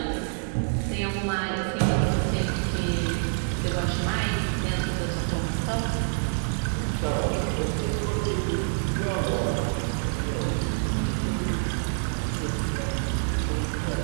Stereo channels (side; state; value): left; silent; digital silence